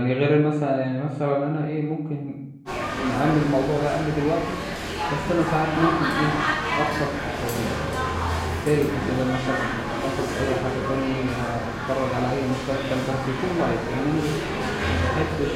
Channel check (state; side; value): identical; both; correlation 1.00